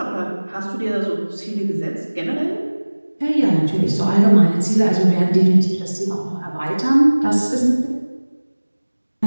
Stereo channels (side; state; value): both; inverted; correlation -1.00